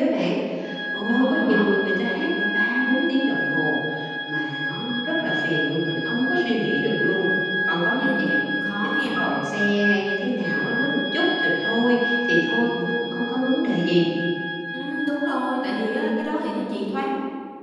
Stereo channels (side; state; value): both; identical; correlation 1.00